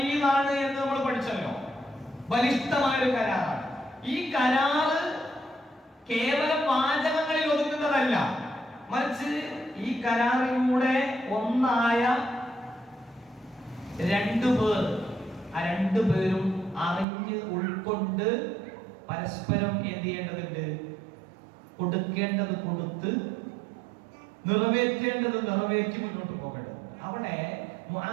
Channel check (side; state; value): left; drops out; at 17.1 s